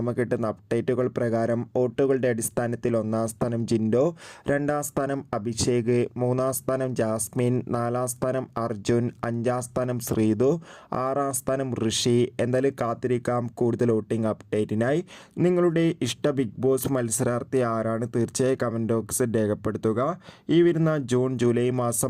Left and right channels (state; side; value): identical; both; correlation 1.00